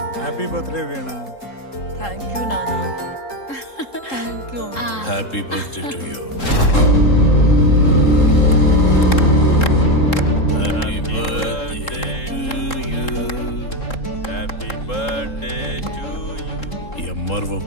Happy birthday Veena. Thank you నాన్న. Thank you. Happy birthday to you. Happy birthday to you. Happy birthday to you. MRO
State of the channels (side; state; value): right; late; 3.7 ms